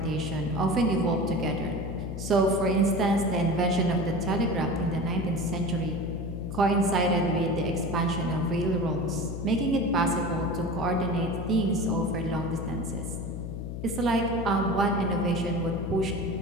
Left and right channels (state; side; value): noise; left; hum, 6 dB below the sound